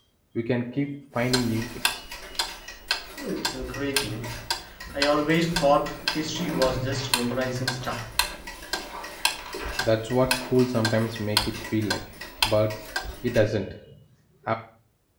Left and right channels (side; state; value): both; identical; correlation 1.00